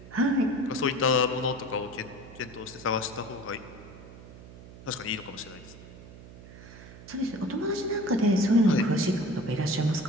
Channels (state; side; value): noise; right; hum, 17 dB below the sound